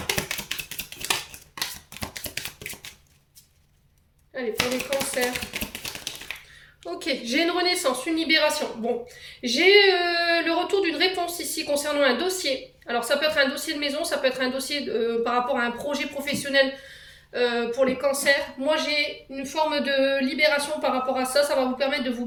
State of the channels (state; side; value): identical; both; correlation 1.00